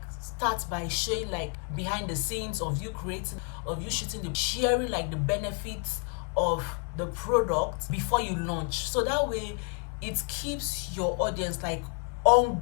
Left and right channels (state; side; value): quieter; right; 37.8 dB